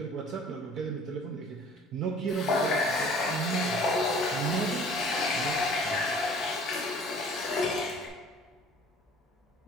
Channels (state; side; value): normal; both; correlation 0.50